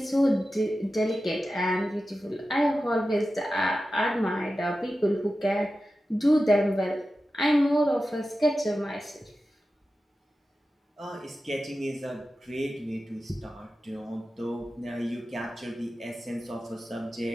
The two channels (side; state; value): both; normal; correlation 0.93